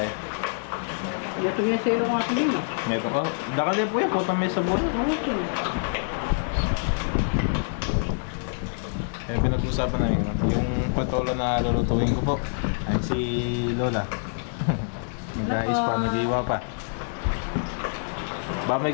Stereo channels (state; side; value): silent; right; 61 dB below the other